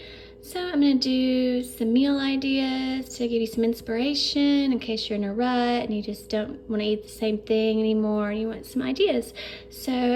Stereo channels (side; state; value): both; identical; correlation 1.00